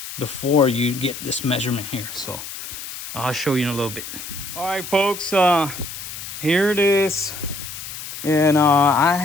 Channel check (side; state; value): left; noise; hiss, 10 dB below the sound